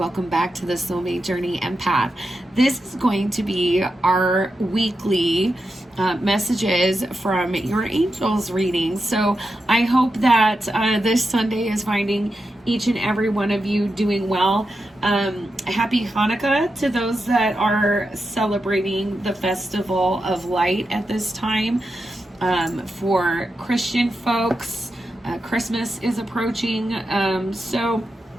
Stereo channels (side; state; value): both; normal; correlation 0.88